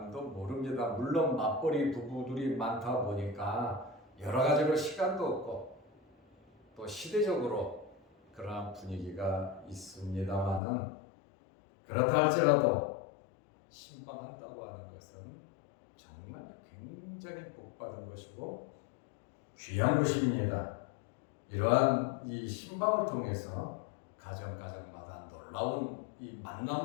모릅니다. 물론 맞벌이 부부들이 많다 보니까 여러 가지로 시간도 없고 또 시대적으로 그러한 분위기가 있습니다만은 그렇다 할지라도 신방한다고 하는 것은 정말 굉장히 복받은 것이고 귀한 것입니다. 이러한 이 신방을 통해서 가정마다 놀라운 이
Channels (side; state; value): right; drops out; at 10.6 s